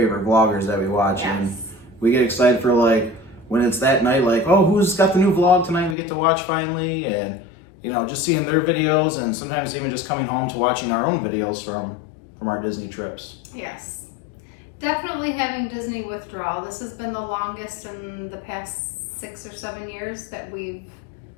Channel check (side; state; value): right; drops out; at 6.0 s